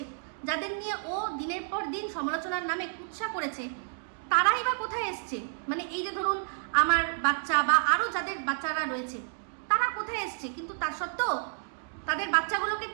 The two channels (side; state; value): left; silent; digital silence